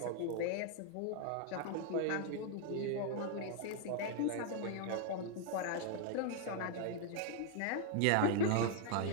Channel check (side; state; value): both; different; correlation 0.00